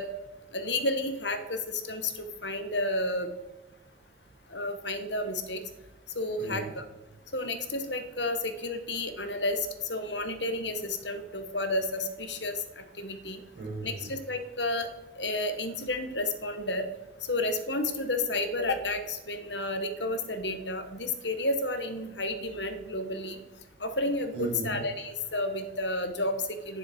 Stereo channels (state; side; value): normal; both; correlation -0.18